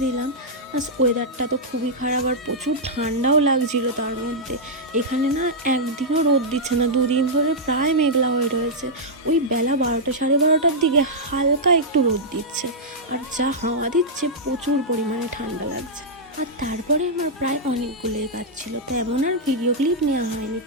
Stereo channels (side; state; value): both; normal; correlation -0.08